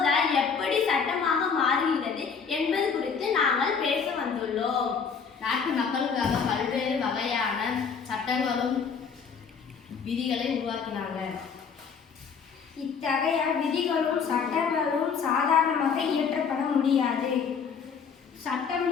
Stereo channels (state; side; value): quieter; right; 6.1 dB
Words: எப்படி சட்டமாக மாறுகிறது என்பது குறித்து நாங்கள் பேச வந்துள்ளோம். நாட்டு மக்களுக்காக பல்வேறு வகையான சட்டங்களும் விதிகளை உருவாக்கினாங்க. இத்தகைய விதிகளும் சட்டங்களும் சாதாரணமாக இயற்றப்பட முடியாது. சட்டம்